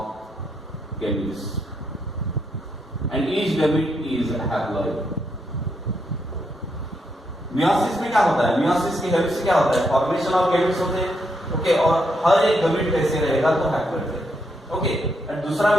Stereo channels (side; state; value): both; normal; correlation 0.79